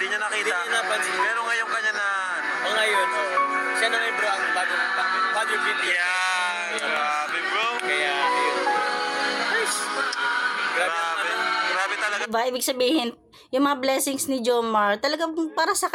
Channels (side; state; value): both; identical; correlation 1.00